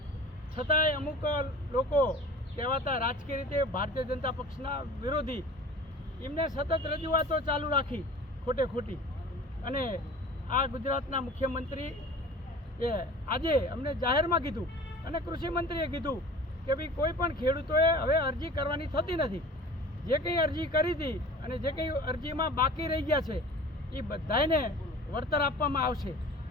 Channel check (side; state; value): both; normal; correlation 0.42